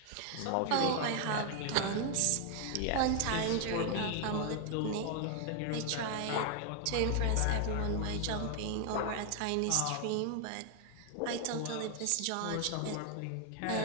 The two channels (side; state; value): both; different; correlation 0.00